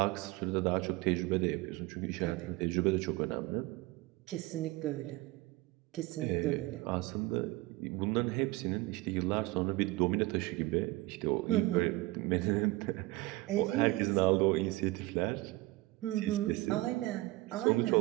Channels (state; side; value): quieter; left; 20.4 dB